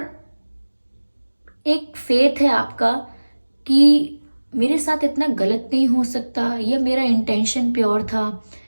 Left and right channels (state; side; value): inverted; both; correlation -1.00